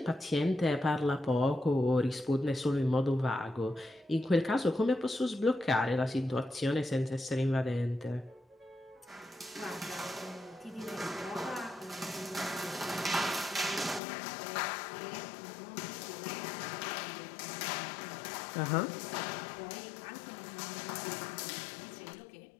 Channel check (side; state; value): right; drops out; at 14.0 s